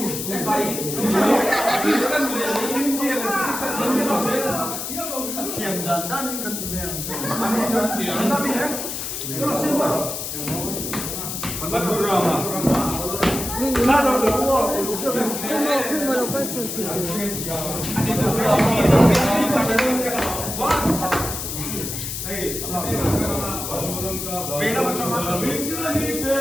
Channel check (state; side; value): noise; left; hiss, 5 dB below the sound